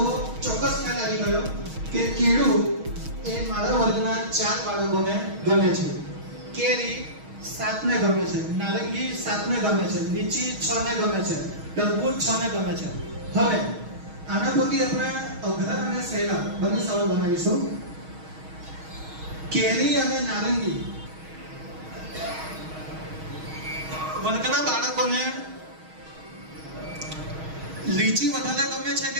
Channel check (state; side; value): late; left; 6.3 ms